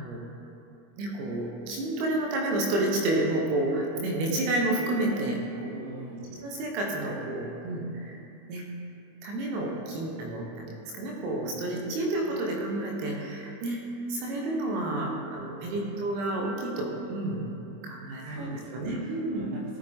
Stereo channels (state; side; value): late; left; 25 ms